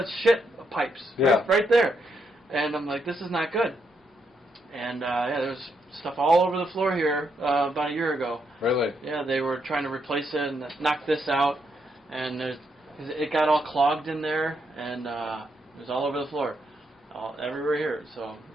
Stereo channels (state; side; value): normal; both; correlation 0.79